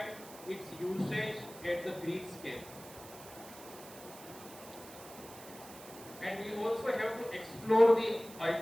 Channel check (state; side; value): noise; right; hiss, 17 dB below the sound